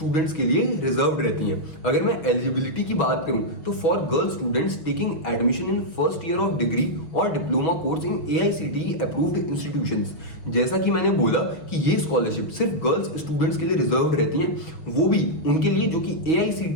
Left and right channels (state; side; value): late; right; 6.1 ms